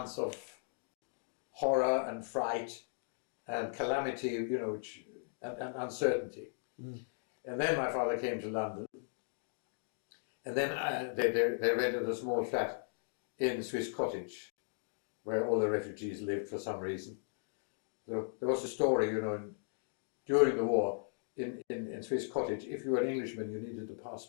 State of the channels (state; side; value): silent; right; digital silence